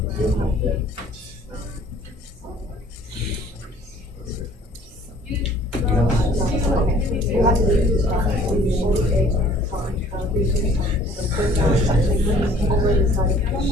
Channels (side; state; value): both; normal; correlation 0.55